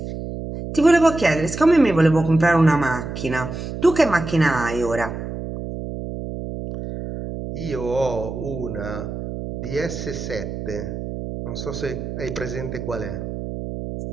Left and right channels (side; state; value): right; noise; hum, 7 dB below the sound